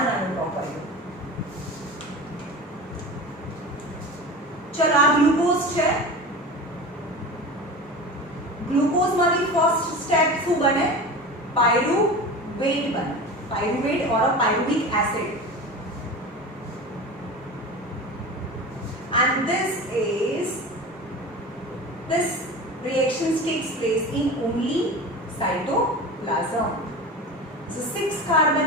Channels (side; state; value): both; normal; correlation 0.31